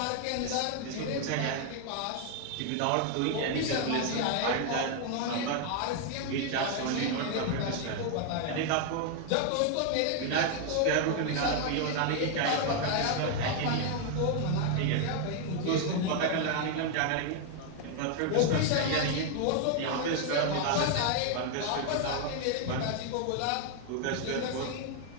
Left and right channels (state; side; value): different; both; correlation 0.00